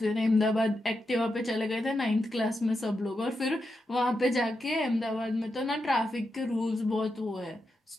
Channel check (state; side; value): normal; both; correlation 0.87